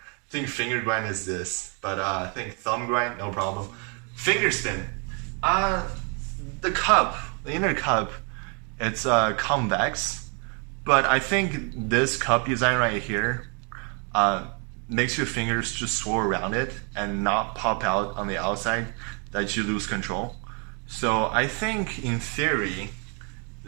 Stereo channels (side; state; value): left; quieter; 36.2 dB